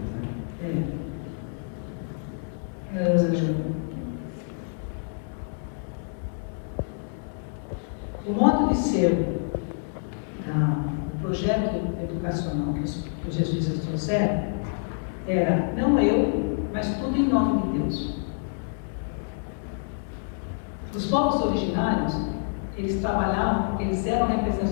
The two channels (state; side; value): silent; right; 60 dB below the other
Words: Né? O modo de ser, o projeto educacional que os jesuítas trouxeram era não eu, mas tudo em nome de Deus. Os povos originários, eles trabalhavam porque eles eram